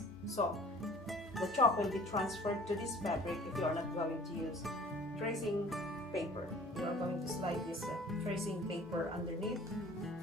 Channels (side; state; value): both; normal; correlation 0.49